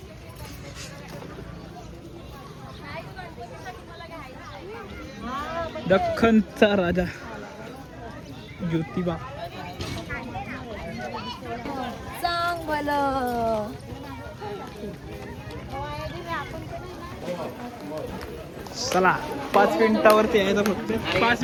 दख्खनचा राजा ज्योतिबा. सांग भलं चला 5 मिनिटावरती यायचं फक्त. 5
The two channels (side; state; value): both; identical; correlation 1.00